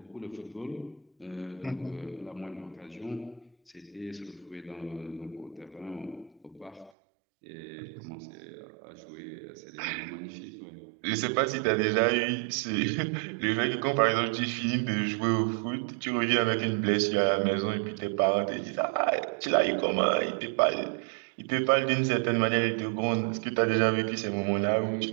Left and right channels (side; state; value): left; drops out; at 6.9 s